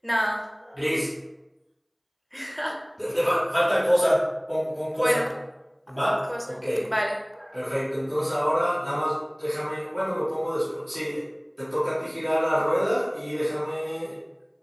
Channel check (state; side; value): identical; both; correlation 1.00